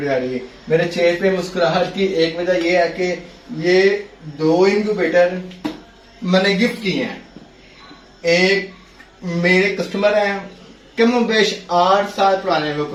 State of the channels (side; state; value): both; identical; correlation 1.00